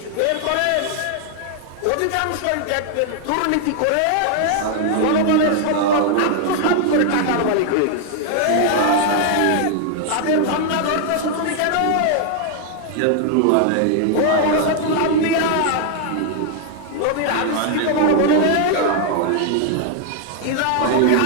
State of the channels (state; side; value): different; both; correlation 0.00